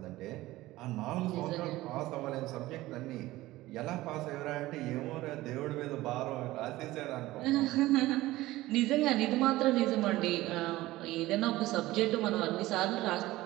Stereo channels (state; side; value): quieter; left; 17.5 dB